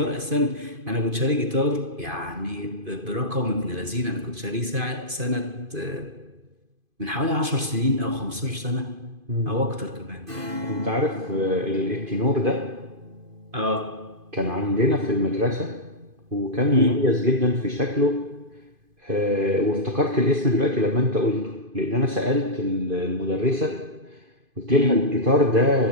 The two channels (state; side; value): late; left; 2.5 ms